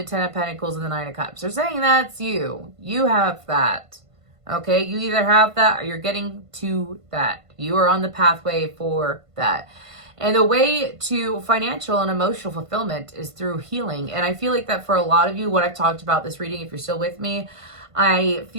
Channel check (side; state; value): left; late; 1.5 ms